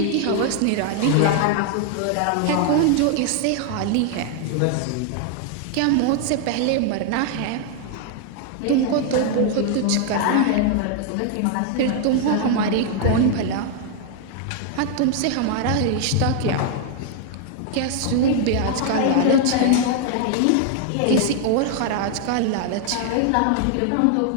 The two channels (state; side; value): different; both; correlation 0.00